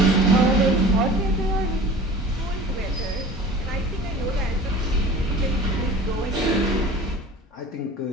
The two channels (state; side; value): normal; both; correlation 0.40